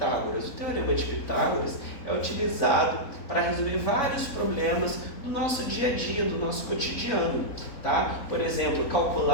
O Teorema de Pitágoras é utilizado para resolver vários problemas do nosso dia a dia, do nosso cotidiano, tá? Por exemplo,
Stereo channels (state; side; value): late; right; 4.0 ms